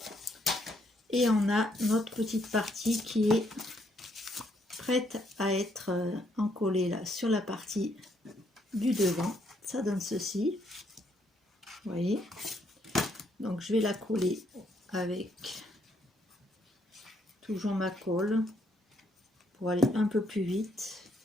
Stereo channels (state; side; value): normal; both; correlation 0.72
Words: Et on a notre petite partie qui est prête à être encollée là sur la partie du devant. Ça donne ceci. Vous voyez. Donc je vais la coller avec toujours ma colle pour aller un peu plus vite.